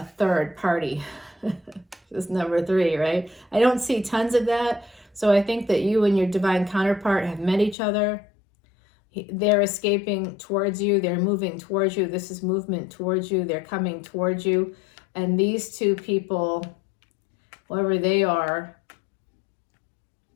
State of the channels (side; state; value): right; drops out; at 7.8 s